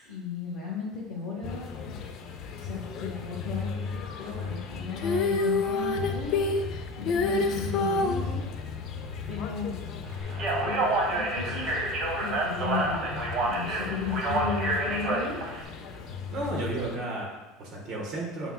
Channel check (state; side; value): normal; both; correlation 0.32